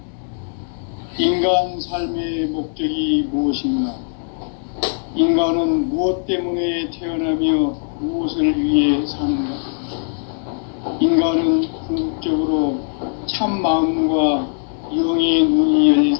인간 삶의 목적이 무엇인가? 인간은 무엇 때문에 태어나며 무엇을 위해 사는가? 인간은 궁극적으로 참 마음과 영의 눈이 열릴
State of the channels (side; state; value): right; silent; 66 dB below the other